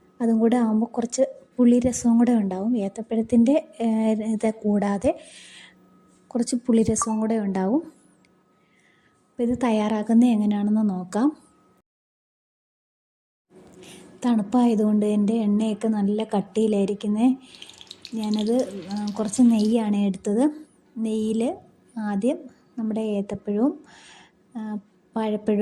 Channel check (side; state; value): both; identical; correlation 1.00